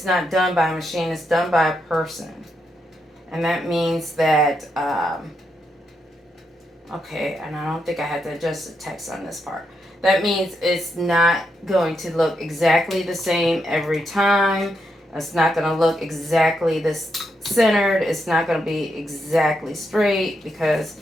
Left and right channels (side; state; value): both; normal; correlation 0.81